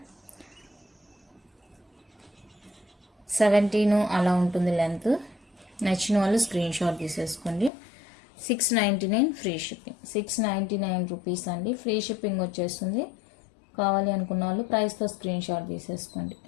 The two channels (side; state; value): right; drops out; at 7.7 s